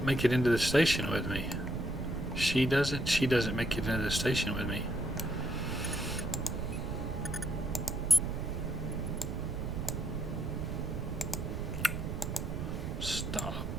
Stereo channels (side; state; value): right; noise; rumble, 4 dB below the sound